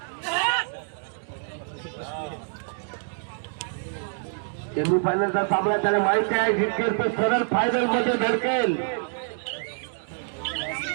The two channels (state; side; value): silent; left; digital silence